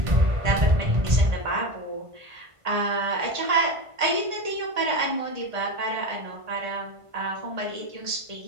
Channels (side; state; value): left; late; 1.5 ms